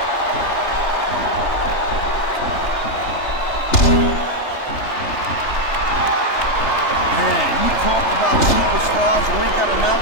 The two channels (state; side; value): late; right; 3.3 ms